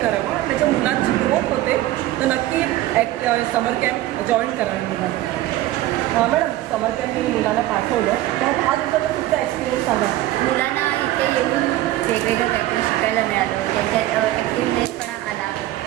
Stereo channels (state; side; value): quieter; left; 15.4 dB